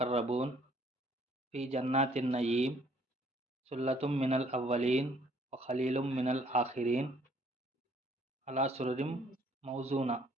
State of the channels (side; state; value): both; normal; correlation 0.62